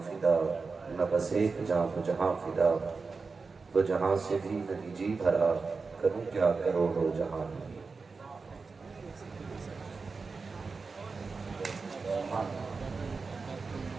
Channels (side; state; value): left; quieter; 4.5 dB